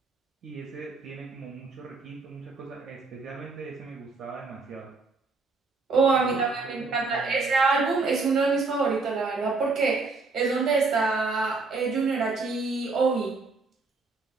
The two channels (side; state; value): left; quieter; 3.9 dB